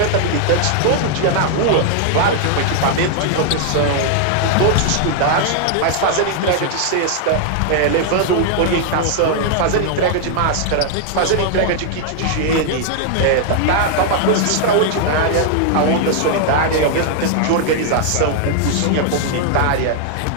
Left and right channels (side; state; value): both; different; correlation 0.00